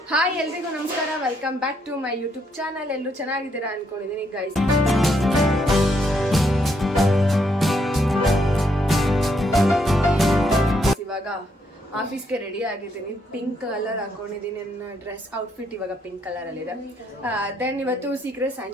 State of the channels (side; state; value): both; normal; correlation 0.75